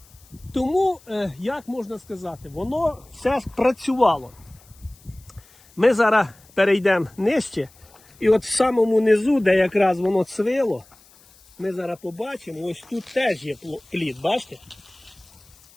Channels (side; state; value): left; noise; hiss, 27 dB below the sound